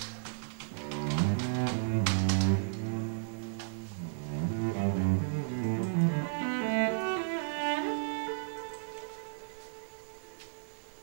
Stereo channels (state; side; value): silent; left; 55 dB below the other